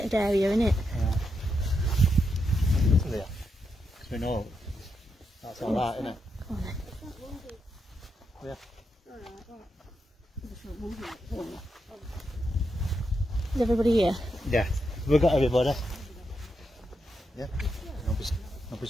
area, isn't it? Yeah. There. Because we know that's alright, isn't it? Come on then. Yeah. Is everybody here? Yeah. We've got everybody. Yeah. Nobody's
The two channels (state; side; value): normal; both; correlation 0.84